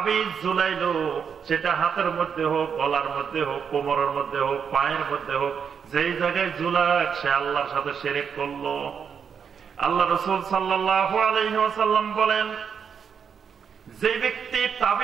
ঝুলাইলো, সেটা হাতের মধ্যে হোক, গলার মধ্যে হোক, কোমরের মধ্যে হোক, পায়ের মধ্যে হোক, যেই জায়গায় ঝুলাক সে আল্লাহর সাথে শিরক করলো। আল্লাহ রাসূল সাল্লাল্লাহু আলাইহি ওয়াসাল্লাম বলেন, যে ব্যক্তি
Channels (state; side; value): quieter; left; 7.0 dB